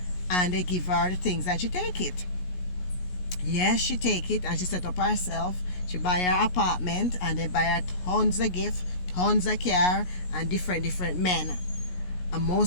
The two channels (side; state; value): right; late; 17 ms